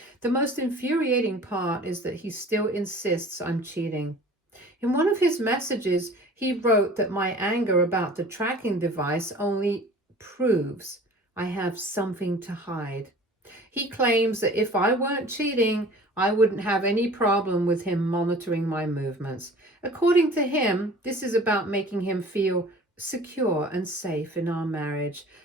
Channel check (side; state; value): both; normal; correlation 0.45